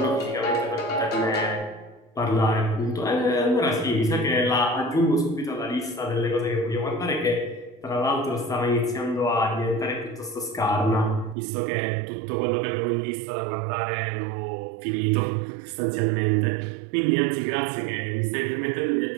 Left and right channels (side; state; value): left; drops out; at 11.4 s